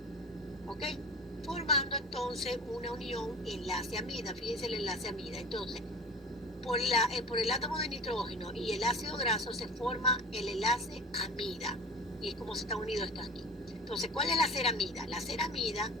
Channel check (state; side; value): normal; both; correlation 0.36